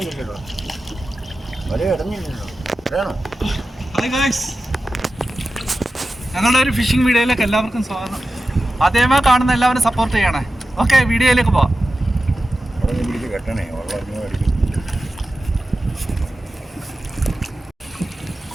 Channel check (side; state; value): both; normal; correlation 0.93